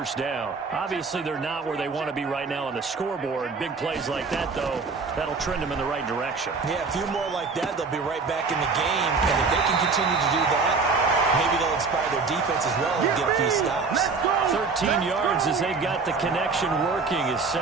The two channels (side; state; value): left; quieter; 4.6 dB